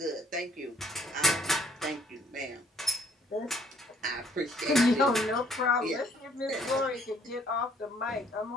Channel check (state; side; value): normal; both; correlation 0.63